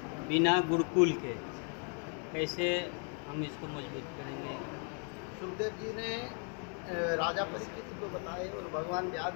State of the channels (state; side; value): quieter; right; 39.1 dB